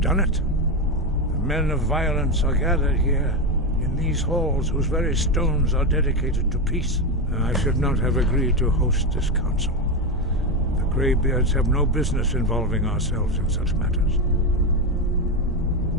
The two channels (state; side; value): normal; both; correlation 0.12